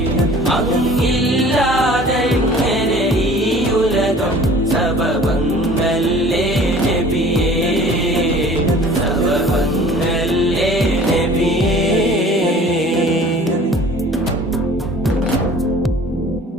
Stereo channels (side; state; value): both; normal; correlation 0.47